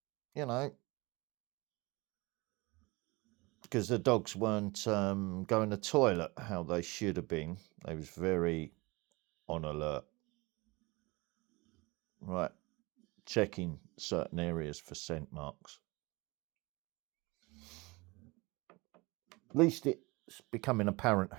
because the dogs weren't going to toilet how they should have been. They was very on alert. Right, checking certain areas for scent marks. At least it's becoming apparent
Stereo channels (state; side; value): quieter; left; 24.4 dB